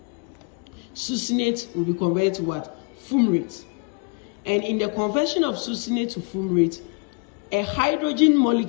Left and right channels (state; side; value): quieter; right; 35.7 dB